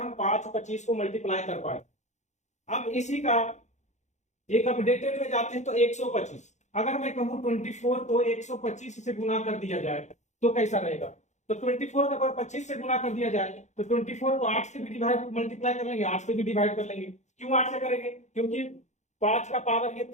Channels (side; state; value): right; late; 0.34 ms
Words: 5 और 25 को मल्टीप्लाई कर पाए। अब इसी का एक अपडेटेड में जाते हैं तो 125। अगर मैं कहूं 24 को 125 से गुना कर दिया जाए तो कैसा रहेगा? तो 24 को अगर 25 से गुना कर दिया जाए तो 24 को 8 से भी डिवाइड मल्टीप्लाई कर लेंगे, 8 से भी डिवाइड कर लेंगे। क्यों 8 से करेंगे? क्योंकि 5 का पावर ये